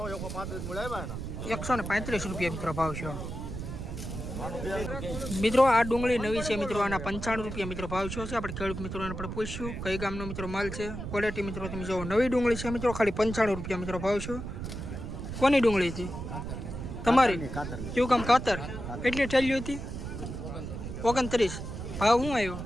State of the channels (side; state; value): right; noise; rumble, 7 dB below the sound